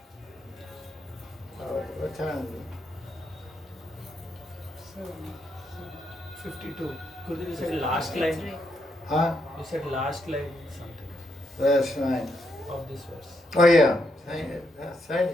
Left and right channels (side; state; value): both; normal; correlation 0.78